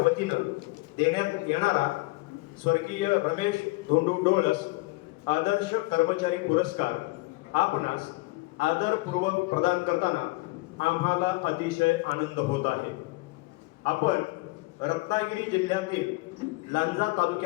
देण्यात येणारा स्वर्गीय रमेश धोंडू डोळस आदर्श कर्मचारी पुरस्कार आपणास आदरपूर्वक प्रदान करताना आम्हाला अतिशय आनंद होत आहे। आपण रत्नागिरी जिल्ह्यातील लांजा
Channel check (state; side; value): quieter; right; 23.8 dB